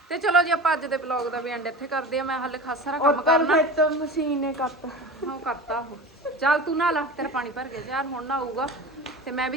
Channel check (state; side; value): normal; both; correlation 0.32